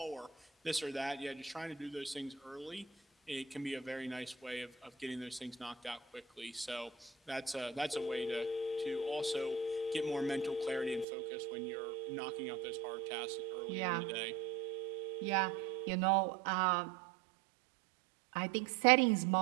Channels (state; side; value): drops out; left; at 11.1 s